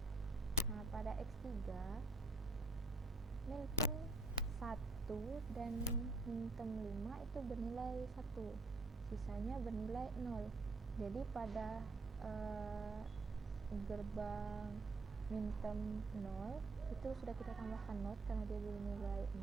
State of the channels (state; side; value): quieter; left; 3.2 dB